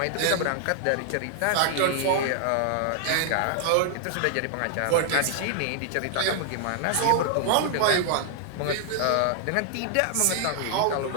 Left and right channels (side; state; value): both; different; correlation 0.00